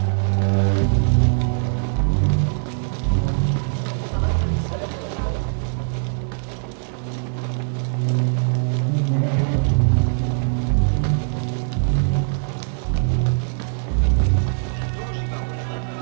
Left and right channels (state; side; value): silent; left; 62 dB below the other